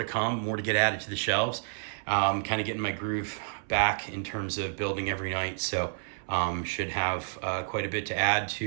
come, more to get added to the shelves. Kind of getting my groove back in terms of building every night. So should have quite a bit to add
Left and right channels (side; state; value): left; silent; 58 dB below the other